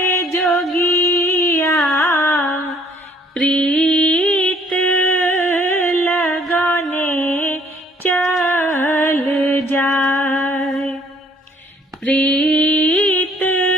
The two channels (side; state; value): both; normal; correlation 0.60